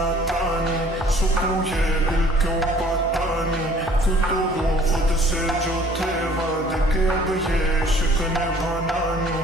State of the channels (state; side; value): normal; both; correlation 0.54